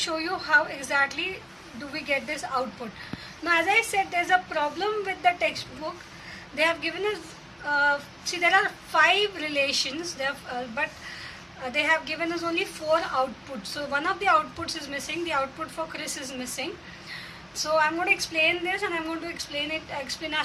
you how exactly do we get this output. Now, as I said, there's a problem with the textbook. They have given us, see, there are 5 relations, but they have given us only 4 outputs. So one of the outputs is missing. The output for Chris is missing. So I'm going to explain this and I'm going to explain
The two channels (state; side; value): identical; both; correlation 1.00